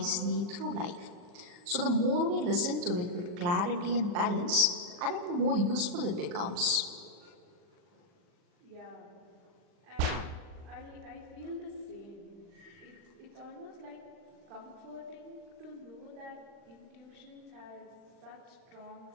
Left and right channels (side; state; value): left; late; 40 ms